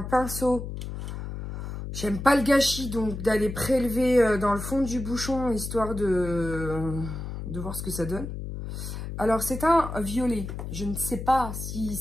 pinceau, j'aime pas le gâchis, donc d'aller prélever dans le fond du bouchon, histoire de voir ce que ça donne. Alors, c'est un violet. Je ne sais pas si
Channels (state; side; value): noise; left; hum, 7 dB below the sound